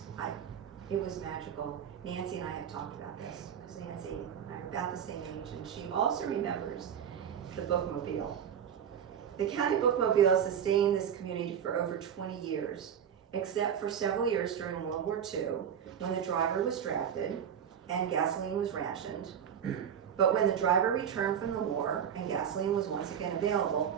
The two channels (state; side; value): quieter; left; 8.3 dB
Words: It was magical. Nancy and I have talked about this because Nancy and I are about the same age, and she also remembers the bookmobile. The county bookmobile sustained this community for over 20 years. Except for several years during World War II, when the driver was drafted and gasoline was rationed. But when the driver returned from the war and gasoline was once again available,